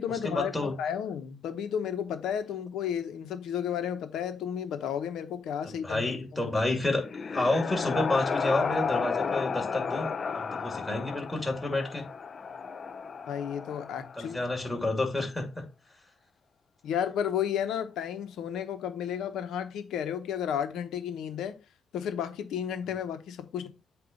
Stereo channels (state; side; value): quieter; right; 4.5 dB